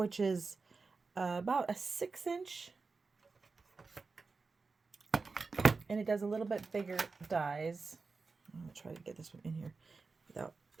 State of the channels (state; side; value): quieter; left; 4.3 dB